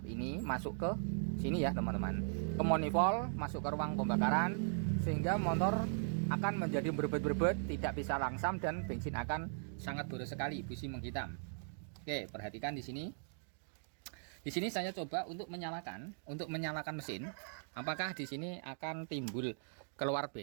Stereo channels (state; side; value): silent; left; digital silence